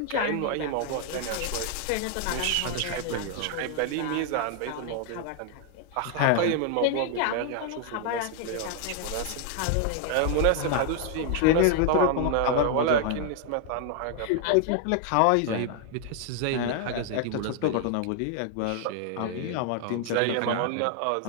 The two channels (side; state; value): both; different; correlation 0.00